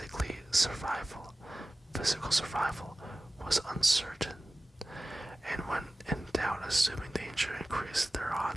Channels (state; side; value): normal; both; correlation 0.96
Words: Physical survival was uncertain, and when in doubt, assuming danger increased their